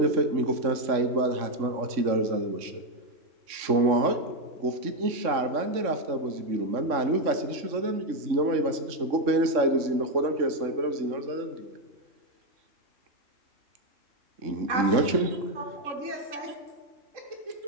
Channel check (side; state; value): left; late; 3.6 ms